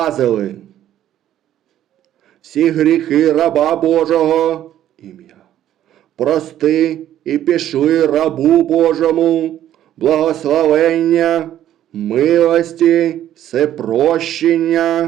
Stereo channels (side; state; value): left; quieter; 11.8 dB